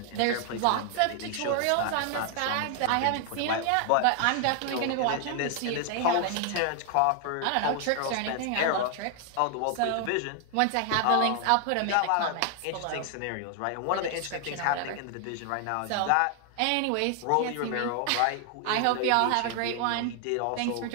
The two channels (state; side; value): different; both; correlation 0.00